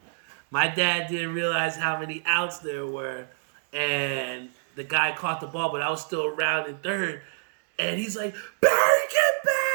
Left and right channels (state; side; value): silent; left; digital silence